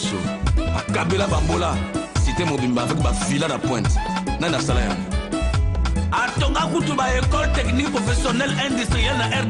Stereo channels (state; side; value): identical; both; correlation 1.00